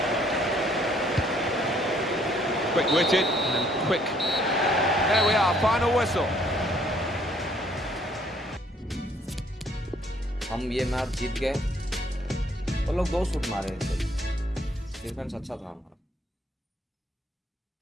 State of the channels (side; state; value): both; normal; correlation 0.63